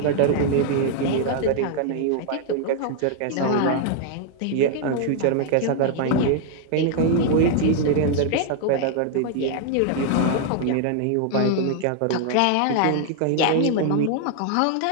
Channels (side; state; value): both; different; correlation 0.00